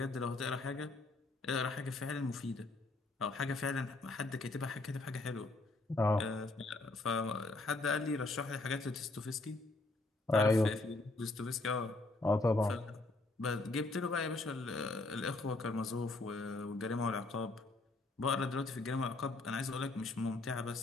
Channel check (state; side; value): quieter; right; 3.1 dB